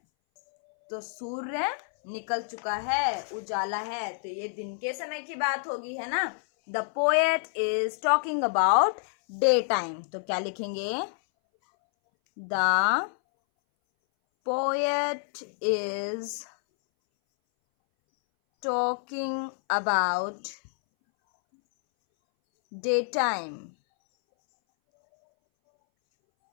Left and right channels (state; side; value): silent; right; 59 dB below the other